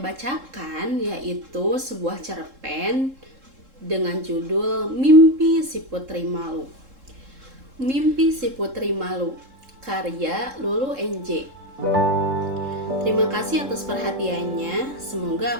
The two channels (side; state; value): left; late; 3.7 ms